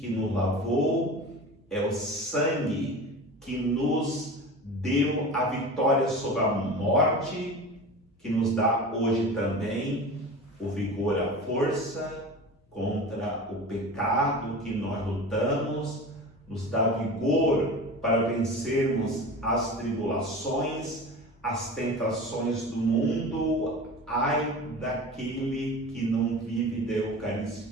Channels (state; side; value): normal; both; correlation 0.33